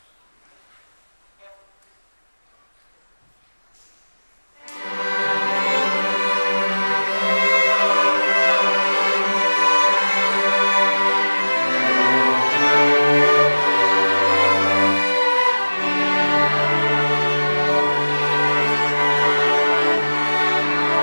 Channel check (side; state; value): both; inverted; correlation -1.00